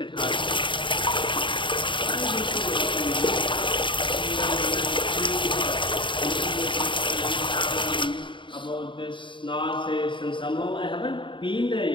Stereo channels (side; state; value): right; late; 0.24 ms